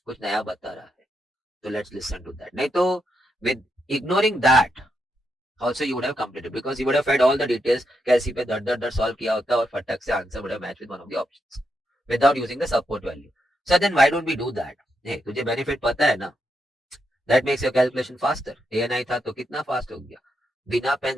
कुछ नया बता रहा है, so let's listen to that, नहीं तो with ignoring that also you would have completed because you would have fed all the details, कैसी पे दर दर दर solve किया होता और फटक से answer would have matched with one of the options without using the support value. So then why don't we do that? hey, तुझे benefit पता है ना, that makes your calculation faster. ANI था तो कितना fast हो गया, बिना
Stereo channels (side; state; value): both; normal; correlation 0.82